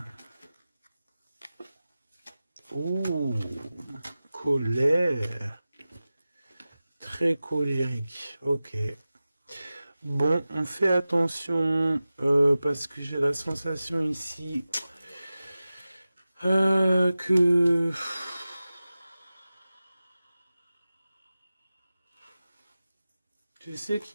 Oh, colère. Très colérique. Ok. Bon, on fait attention parce que j'ai la sensation ici que tu sais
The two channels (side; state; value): both; inverted; correlation -0.96